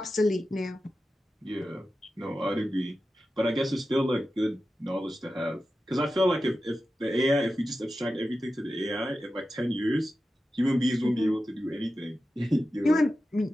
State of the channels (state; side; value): normal; both; correlation 0.92